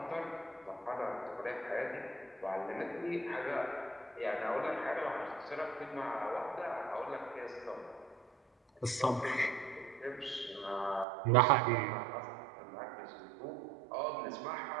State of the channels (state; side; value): drops out; left; at 11.1 s